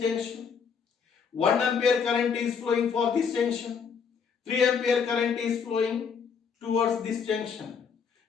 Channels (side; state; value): right; quieter; 6.4 dB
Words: junction. 1 ampere current is flowing for this junction. 3 ampere current is flowing towards this junction.